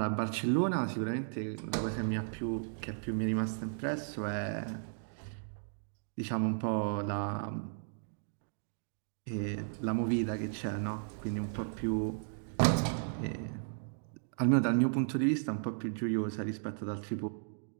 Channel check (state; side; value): silent; left; digital silence